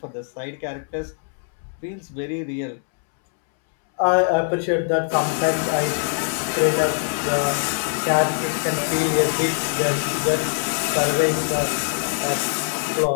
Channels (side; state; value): right; silent; 64 dB below the other